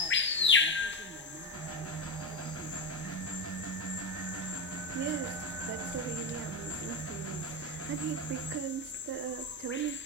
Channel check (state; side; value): normal; both; correlation 0.13